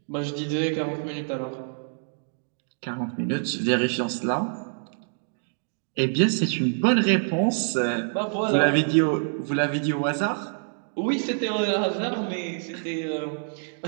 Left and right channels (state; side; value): silent; left; digital silence